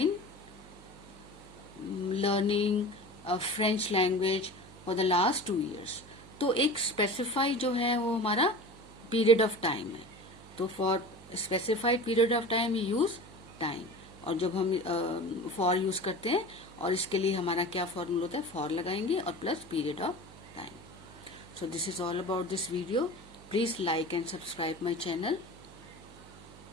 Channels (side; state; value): right; noise; hum, 20 dB below the sound